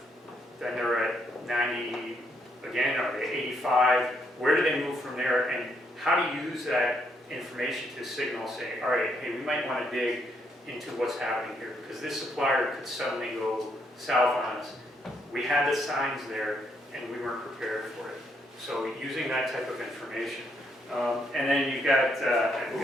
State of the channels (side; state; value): both; normal; correlation 0.74